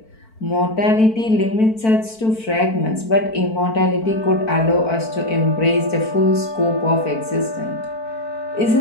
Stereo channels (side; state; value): right; late; 4.5 ms